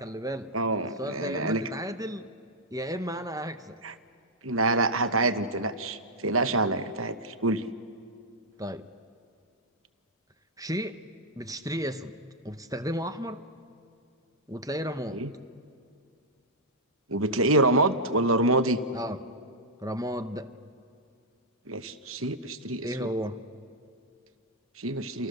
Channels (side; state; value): both; normal; correlation -0.07